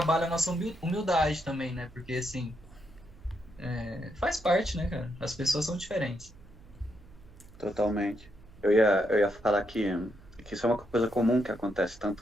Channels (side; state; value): right; noise; hum, 22 dB below the sound